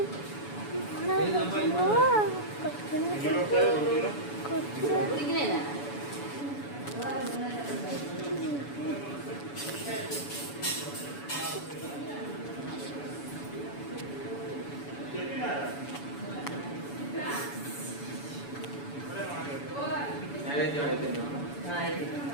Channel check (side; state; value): right; late; 7.0 ms